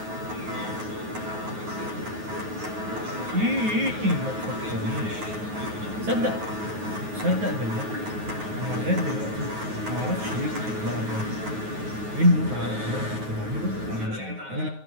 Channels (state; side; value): late; left; 9.4 ms